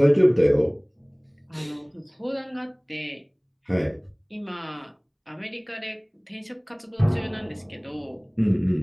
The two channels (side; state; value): both; identical; correlation 1.00